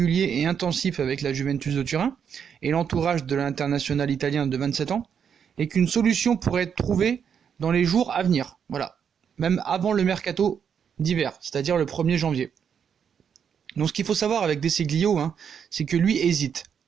et intensifs avec la Juventus de Turin et l'entourage de l'international italien de 27 ans, et qu'une solution pourrait être trouvée dans les jours à venir, voilà, même avant le mercato d'hiver, c'est-à-dire le 1er janvier. Donc ce qu'il faut savoir avec Desiglio, c'est que lui hésite,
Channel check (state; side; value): quieter; left; 7.5 dB